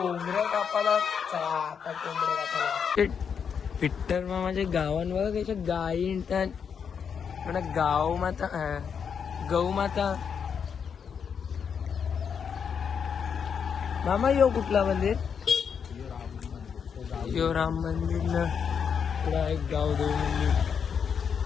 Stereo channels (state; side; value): quieter; right; 7.0 dB